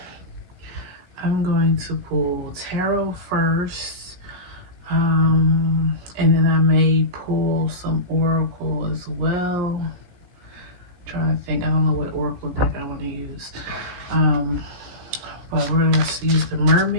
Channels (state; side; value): late; left; 16 ms